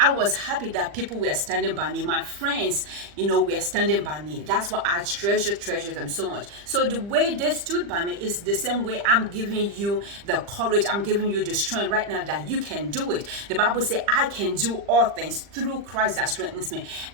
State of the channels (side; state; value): left; late; 40 ms